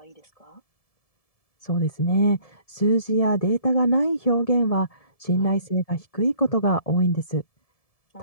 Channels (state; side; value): late; right; 1.7 ms